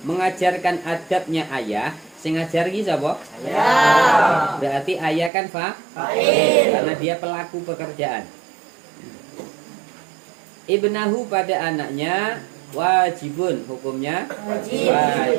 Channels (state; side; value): drops out; left; at 5.3 s